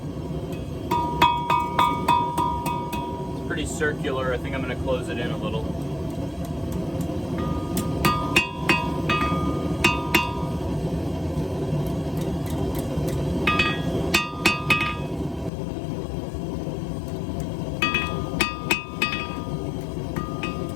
Pretty circular. I think I'm going to close it in a little.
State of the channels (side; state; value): right; drops out; at 15.5 s